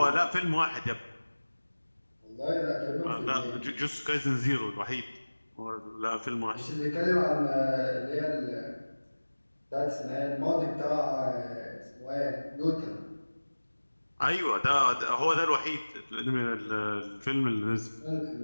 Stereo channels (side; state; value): both; inverted; correlation -1.00